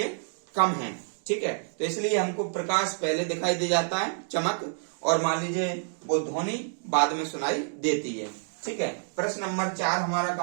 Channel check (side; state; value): left; silent; digital silence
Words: कम है। ठीक है, तो इसलिए हमको प्रकाश पहले दिखाई दे जाता है, चमक, और मान लीजिए वो ध्वनि बाद में सुनाई देती है। ठीक है, प्रश्न नंबर 4 हमारा